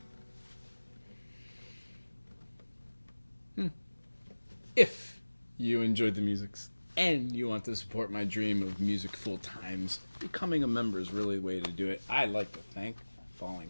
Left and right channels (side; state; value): both; inverted; correlation -1.00